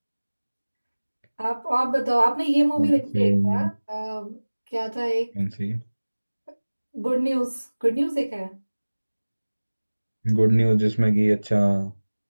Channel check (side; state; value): both; inverted; correlation -1.00